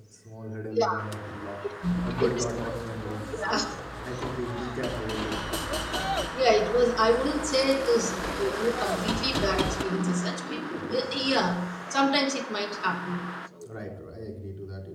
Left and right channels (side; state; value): both; identical; correlation 1.00